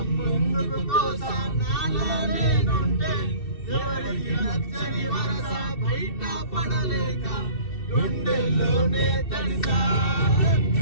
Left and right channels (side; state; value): right; late; 2.7 ms